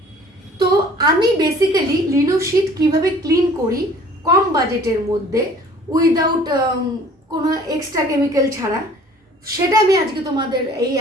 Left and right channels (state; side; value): normal; both; correlation 0.52